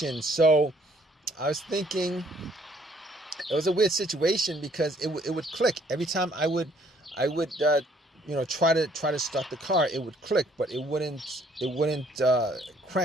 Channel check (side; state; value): both; normal; correlation 0.63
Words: So I was thinking it was a weird situation, because it would click every time I would I would try to start the car. It would click, but it wouldn't